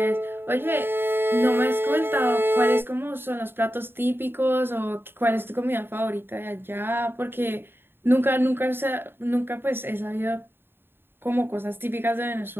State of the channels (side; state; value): left; late; 0.11 ms